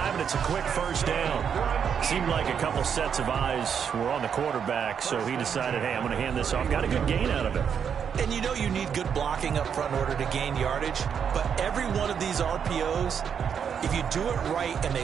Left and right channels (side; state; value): left; quieter; 7.5 dB